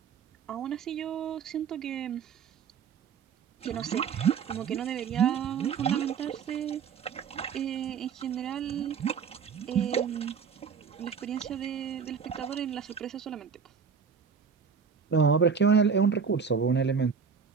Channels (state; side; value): quieter; left; 6.4 dB